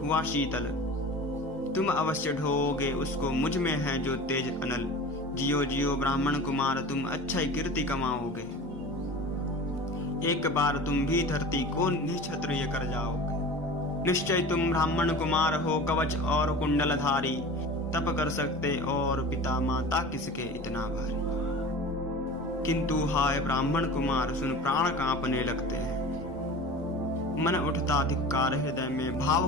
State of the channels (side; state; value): both; normal; correlation 0.36